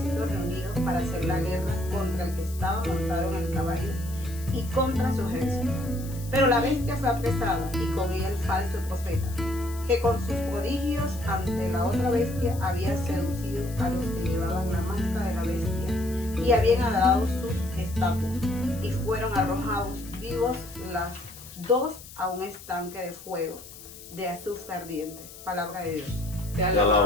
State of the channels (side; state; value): left; noise; hiss, 17 dB below the sound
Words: reunidos para hacer la guerra contra el que estaba montado en el caballo y contra su ejército. Pero la bestia fue apresada y con ella el falso profeta, que con sus prodigios ante la otra bestia había seducido a los que llevaban la marca de la bestia y habían adorado su estatua, y fueron arrojados vivos las dos a un estanque de fuego de azufre ardiente. Palabra de Dios. Te